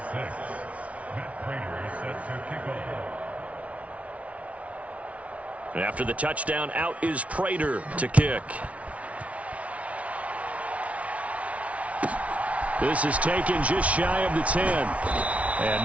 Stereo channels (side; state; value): left; late; 0.065 ms